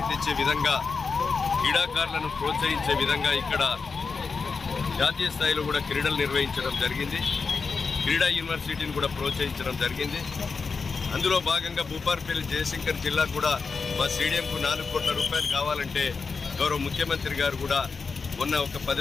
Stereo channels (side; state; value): right; quieter; 4.8 dB